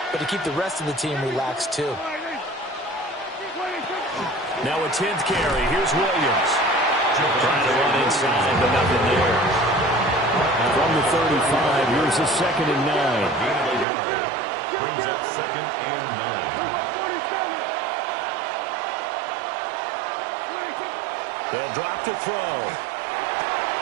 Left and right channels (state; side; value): drops out; left; at 13.9 s